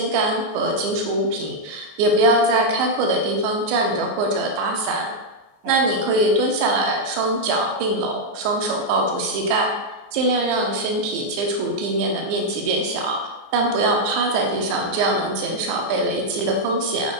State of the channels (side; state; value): left; late; 14 ms